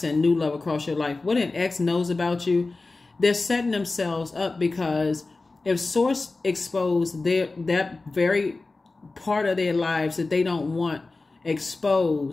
new love across your life. What an ex knows about you, they're setting themselves up, because if Source exposed that very part of their lives that they don't want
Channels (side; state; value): right; quieter; 3.5 dB